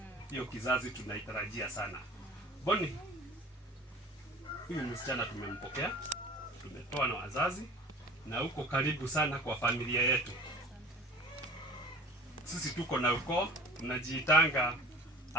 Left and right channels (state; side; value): normal; both; correlation 0.43